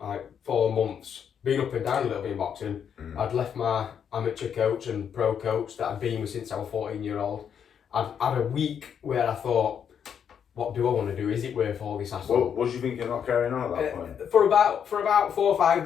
4 months, been up and down a little bit in boxing. I'd left my amateur coach and pro coach that I'd been with since I was 14-year-old. I'd had a week where I thought, what do I want to do? Is it worth all this hassle? What was you thinking not carrying on at that point? For about 4 or 5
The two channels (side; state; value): right; quieter; 8.0 dB